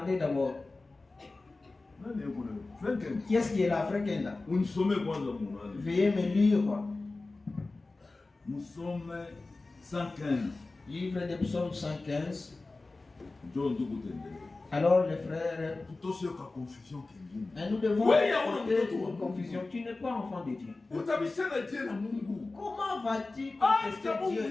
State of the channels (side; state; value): right; quieter; 3.4 dB